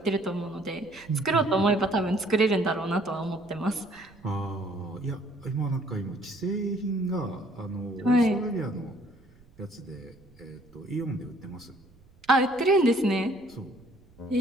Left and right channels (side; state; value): right; noise; rumble, 28 dB below the sound